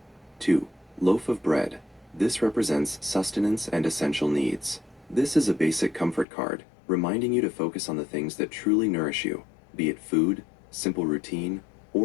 2. Loaf of bread. This represents sustenance and essential needs. This is a basic comfort card, reminding you to focus on the things that truly nourish you, be it food, simple routine,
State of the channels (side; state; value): right; drops out; at 6.2 s